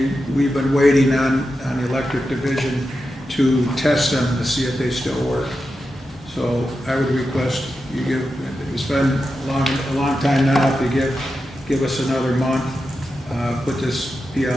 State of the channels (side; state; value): both; normal; correlation 0.90